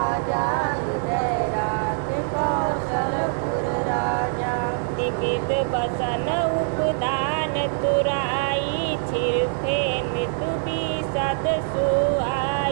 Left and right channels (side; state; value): left; silent; digital silence